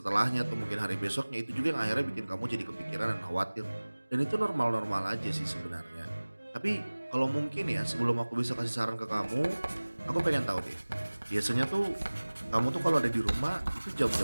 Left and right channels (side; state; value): both; inverted; correlation -1.00